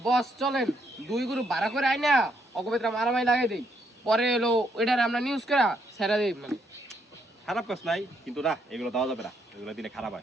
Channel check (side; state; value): both; normal; correlation 0.74